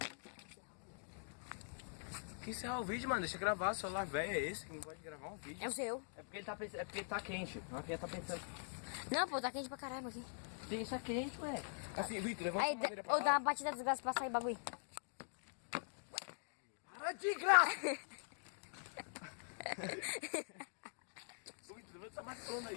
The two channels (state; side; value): silent; right; digital silence